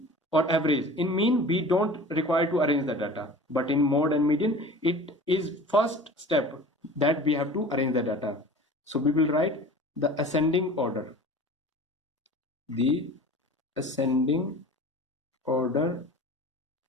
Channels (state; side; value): normal; both; correlation 0.40